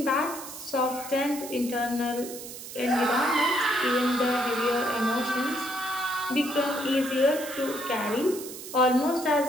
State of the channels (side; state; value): right; noise; hiss, 12 dB below the sound